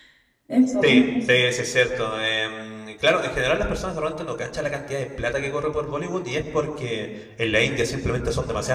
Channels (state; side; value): identical; both; correlation 1.00